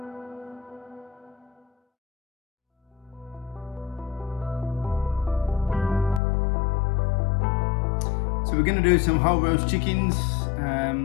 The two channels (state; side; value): drops out; right; at 6.2 s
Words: So we're going to do some whole roast chickens.